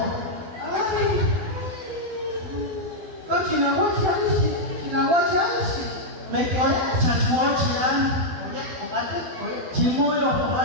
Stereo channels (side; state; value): left; late; 12 ms